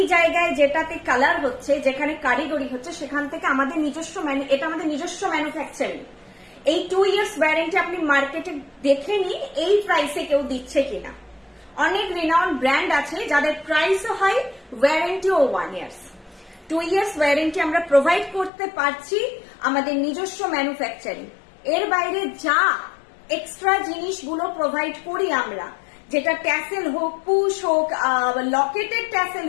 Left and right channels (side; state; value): right; drops out; at 18.5 s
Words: জায়গায় যেটাতে কালার হচ্ছে, যেখানে কারিগরি হচ্ছে, সেখান থেকে আমাদের নিজস্ব এটা আমাদের নিজস্ব ম্যানুফ্যাকচারিং। এই 2 years ওয়ারেন্টি আপনি মার্কেটে দেখে নিন এই প্রাইসে কেউ দিচ্ছে কিনা। অনেক রিনাউন্ড ব্র্যান্ড আছে যাদের প্রাইসও হয়, ওয়ারেন্টিও 1 years। 2 years ওয়ারেন্টি আমরা প্রোভাইড করতে পারছি আমাদের নিজস্ব ম্যানুফ্যাকচারিং। এর বাইরে যা এক্সট্রা জিনিসগুলো প্রোভাইড করি আমরা, যেটা ট্যাসেল হোক, পুশ হোক, লকেটেড ট্যাসেল